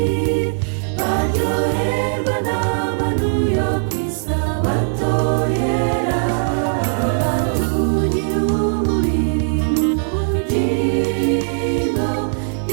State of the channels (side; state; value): left; silent; digital silence